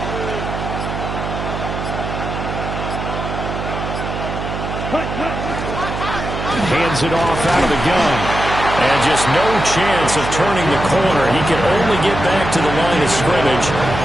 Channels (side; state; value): right; noise; hum, 5 dB below the sound